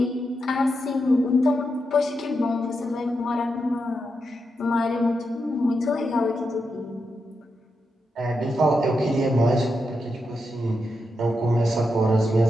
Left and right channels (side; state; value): both; normal; correlation 0.85